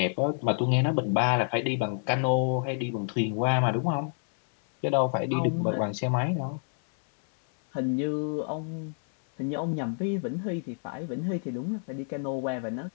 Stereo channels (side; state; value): right; silent; 59 dB below the other